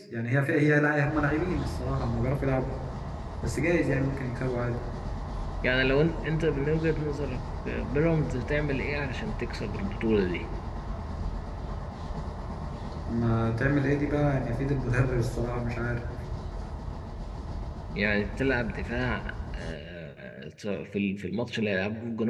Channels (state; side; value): identical; both; correlation 1.00